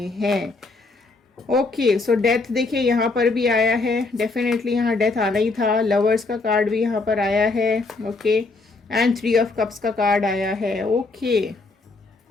हैं। ओके सो डेथ देखिए यहाँ पर भी आया है, डेफिनेटली यहाँ डेथ आना ही था। लवर्स का कार्ड भी यहाँ पर आया है। ओके एंड 3 ऑफ कप्स का कार्ड आया है। ओके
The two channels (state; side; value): quieter; right; 3.7 dB